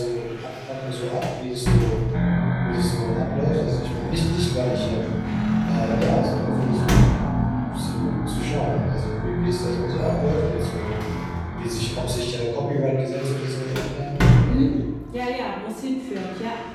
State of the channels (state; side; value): identical; both; correlation 1.00